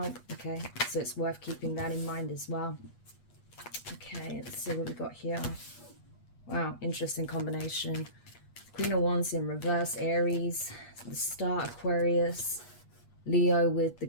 okay? So it's worth keeping that in mind as well. Okay, let's see what we got here. Wow, interesting combination. Queen of Wands in reverse, Aries, the Star, Aquarius, Leo with the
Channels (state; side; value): late; right; 8.3 ms